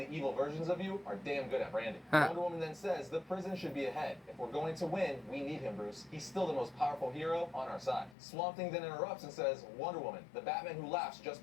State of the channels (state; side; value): drops out; right; at 8.2 s